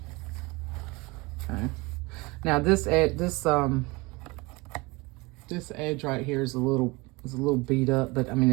Okay. Now this edge right here is a little beat up, but I mean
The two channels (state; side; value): quieter; left; 24.5 dB